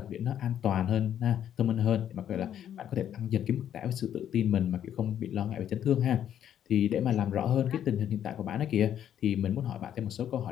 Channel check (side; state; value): right; quieter; 10.1 dB